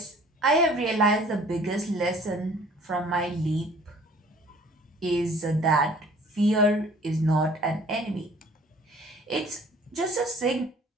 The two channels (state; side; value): normal; both; correlation 0.52